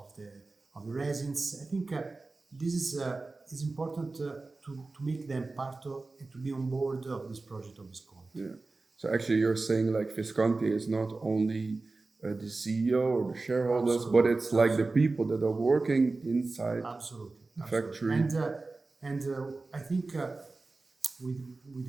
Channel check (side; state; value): left; quieter; 3.5 dB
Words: the resins. I think this is important to make them part of and to be on board of this project of Visconti. Yeah. So actually, you're saying like Visconti is not only the CEO or the shareholders, but it's like the people that are working inside the factory. And I think